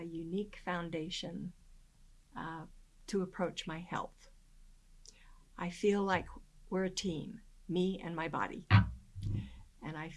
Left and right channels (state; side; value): identical; both; correlation 1.00